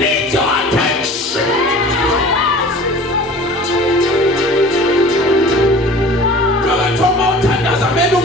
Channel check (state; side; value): normal; both; correlation 0.42